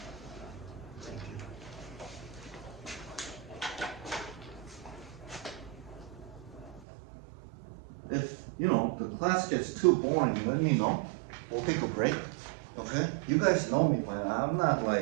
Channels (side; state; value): left; drops out; at 6.9 s